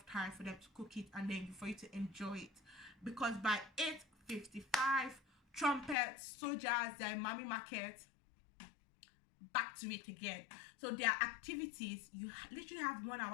time for them to cook it and then for you to enjoy it. Because by 8:55, trumpets, soldiers, they're in Mami Market, back to it again. So their activities, you literally have 1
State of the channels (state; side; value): drops out; right; at 6.0 s